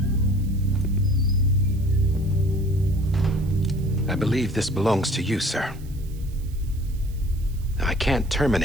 I believe this belongs to you, sir. I can't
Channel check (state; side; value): noise; right; hiss, 24 dB below the sound